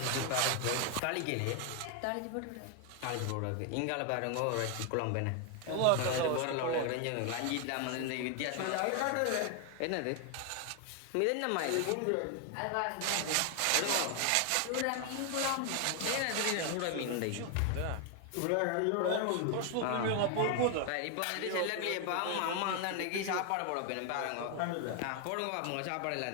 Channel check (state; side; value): different; both; correlation 0.01